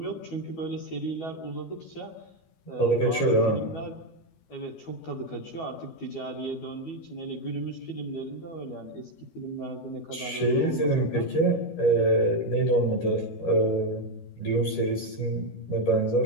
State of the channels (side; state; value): right; late; 12 ms